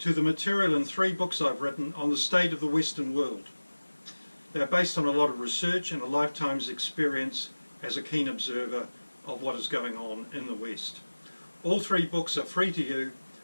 the material in 3 books I've written on the state of the Western world. They're based on a lot of research and a lifetime's experience as a keen observer of what is going on in the West. All 3 books are free to you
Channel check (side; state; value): both; inverted; correlation -1.00